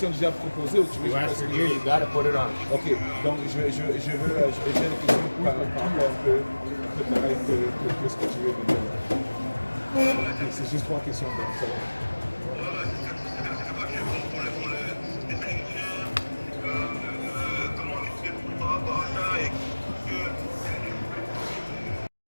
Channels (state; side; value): inverted; both; correlation -1.00